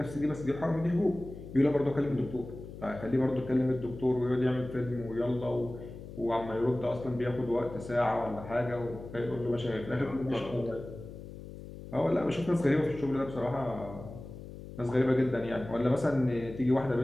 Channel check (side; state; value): left; noise; hum, 13 dB below the sound